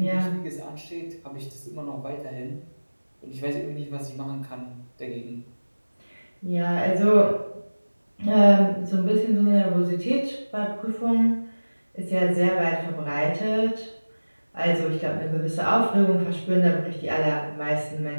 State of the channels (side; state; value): both; inverted; correlation -1.00